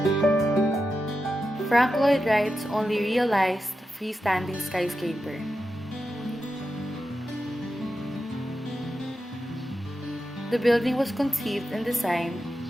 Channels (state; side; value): normal; both; correlation 0.90